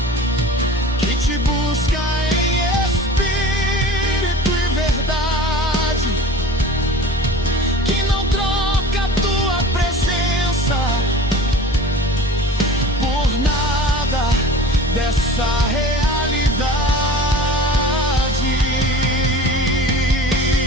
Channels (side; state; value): both; normal; correlation 0.40